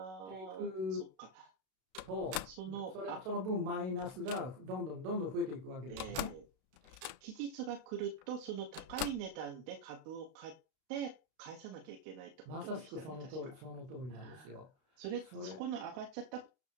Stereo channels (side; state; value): left; late; 32 ms